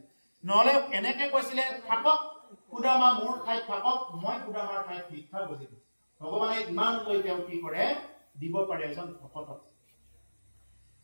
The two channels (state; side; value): inverted; both; correlation -1.00